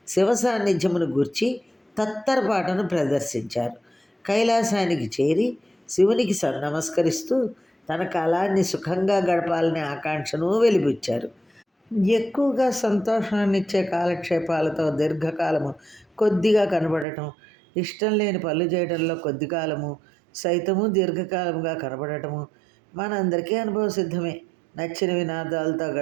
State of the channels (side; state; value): left; drops out; at 17.1 s